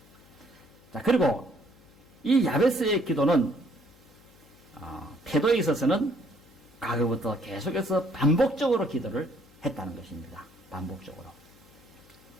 자, 그리고 이 야베스의 기도는 태도에 있어서는 과거부터 계속해서 반복적으로 기도를 했다는 것입니다. 반복적으로.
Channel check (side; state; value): left; noise; hum, 26 dB below the sound